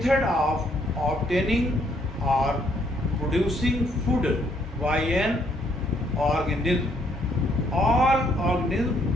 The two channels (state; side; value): normal; both; correlation 0.69